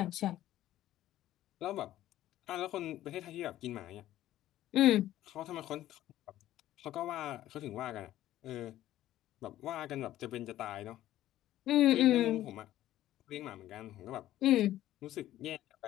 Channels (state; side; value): quieter; right; 13.7 dB